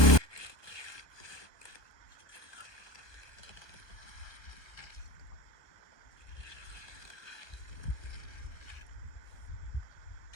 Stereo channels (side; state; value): right; late; 1.2 ms